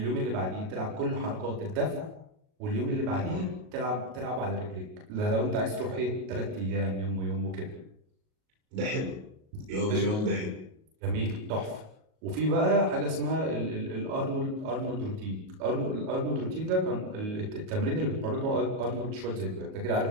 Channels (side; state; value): left; late; 38 ms